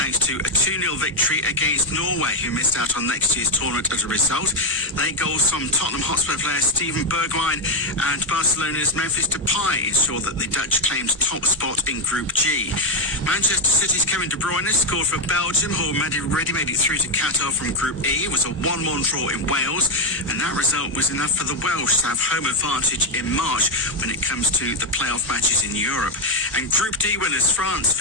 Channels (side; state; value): both; normal; correlation 0.04